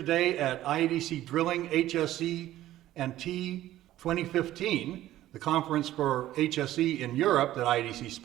at IADC Drilling HSE and T 2015, the conference for HSE in Europe that IADC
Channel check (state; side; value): quieter; left; 14.1 dB